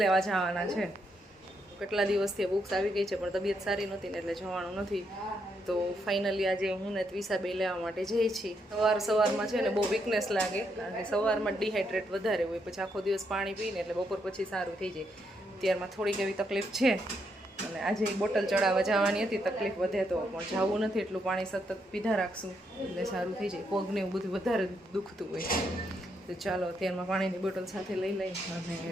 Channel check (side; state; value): both; normal; correlation 0.78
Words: લેવા જવાના છે. કેટલા દિવસથી બુક્સ આવી ગઈ છે પણ તબિયત સારી નહોતી ને એટલે જવાનું નથી. તો ફાઇનલી આજે હું ને ત્વિષા બે લેવા માટે જઈએ છીએ. સવારમાં છે ને બહુ વીકનેસ લાગે કારણ કે સવારમાં ડિહાઇડ્રેટ વધારે હોય, પછી આખો દિવસ પાણી પીને એટલે બપોર પછી સારું થઈ જાય. ત્યારમાં થોડીક એવી તકલીફ છે અને આજે બોટલ ચડાવવા જવાની હતી. તકલીફ વધે તો પણ જવું નથી, એટલું પાણી સતત પીધા રાખશું એટલે સારું થઈ જાય. પગને એવું બધું વધારે દુખતું હોય તો ચાલો અત્યારમાં પાણીની બોટલ સાથે લઈ લઈ અને